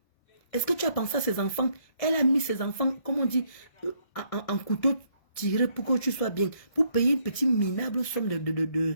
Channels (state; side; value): late; right; 1.7 ms